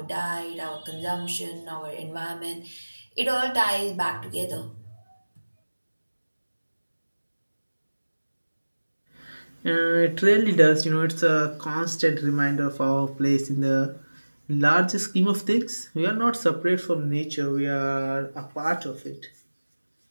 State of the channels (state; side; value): inverted; both; correlation -1.00